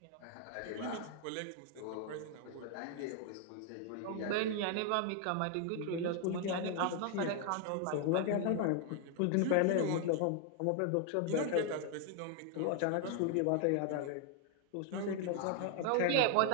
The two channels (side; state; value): both; different; correlation 0.00